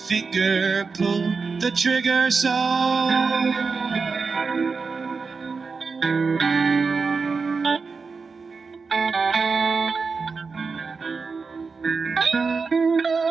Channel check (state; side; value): quieter; left; 4.8 dB